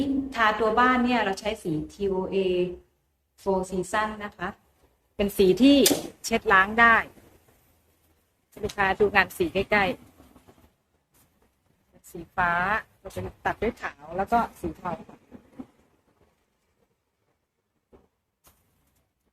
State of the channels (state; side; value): identical; both; correlation 1.00